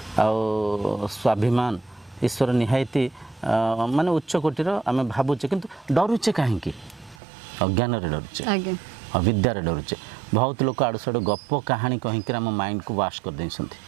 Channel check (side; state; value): left; drops out; at 7.2 s